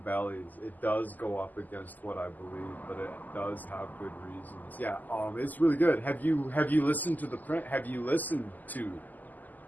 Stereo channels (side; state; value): right; late; 0.083 ms